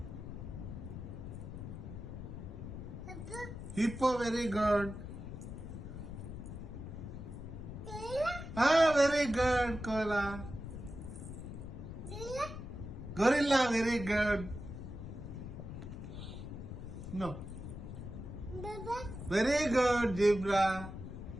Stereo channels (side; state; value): left; noise; rumble, 9 dB below the sound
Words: Hippo, very good. Very good, Koala. Gorilla, very good. No. Very good, zebra.